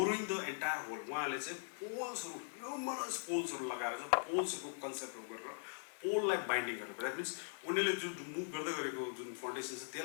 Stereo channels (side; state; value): right; silent; digital silence